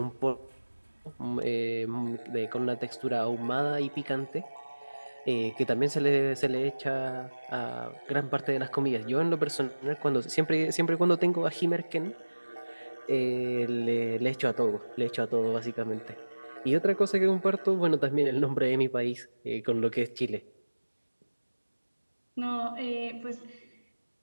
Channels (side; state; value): both; inverted; correlation -1.00